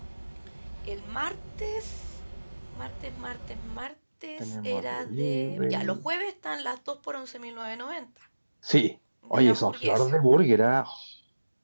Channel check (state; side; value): inverted; both; correlation -1.00